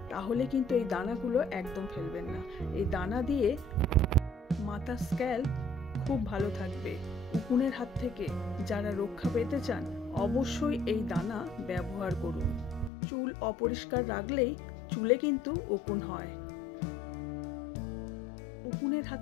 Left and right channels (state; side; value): drops out; right; at 12.9 s